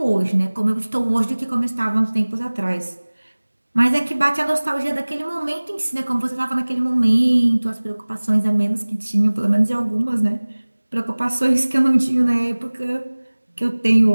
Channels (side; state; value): both; inverted; correlation -1.00